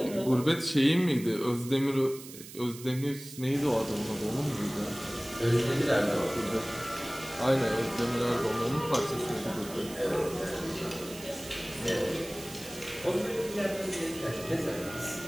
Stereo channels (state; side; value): noise; right; hiss, 15 dB below the sound